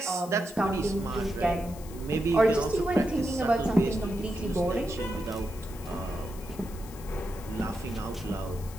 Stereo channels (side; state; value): left; noise; hiss, 19 dB below the sound